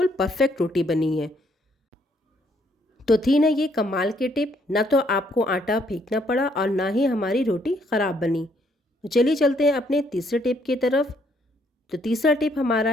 परफेक्ट रोटी बनी है। तो थी ना ये कमाल की टिप, ना तो आपको आटा फेंकना पड़ा और ना ही हमारी रोटी ख़राब बनी। तो चलिए चलते हैं अपने तीसरे टिप की तरफ। तो तीसरा टिप हमारा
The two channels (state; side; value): normal; both; correlation 0.69